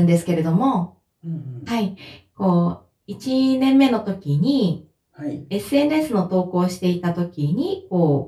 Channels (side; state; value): both; identical; correlation 1.00